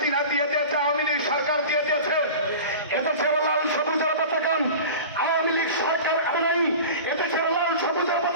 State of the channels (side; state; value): both; inverted; correlation -0.35